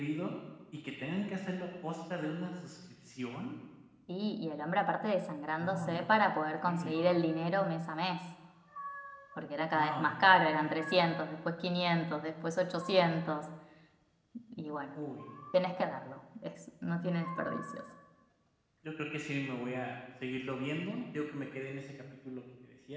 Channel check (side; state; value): both; identical; correlation 1.00